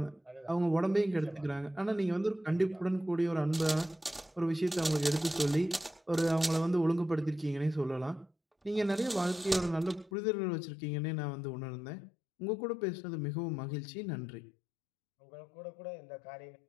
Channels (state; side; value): drops out; right; at 10.1 s